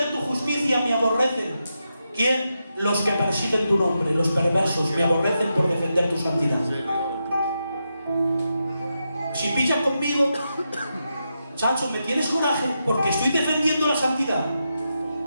tu justicia me aborrecen. ¿Quién? Los que persiguen tu nombre, los perversos, me aborrecen por defender tu santidad. Si pillas conmigo, chacho, me tienes coraje porque estoy defendiendo la santidad.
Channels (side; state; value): both; inverted; correlation -0.86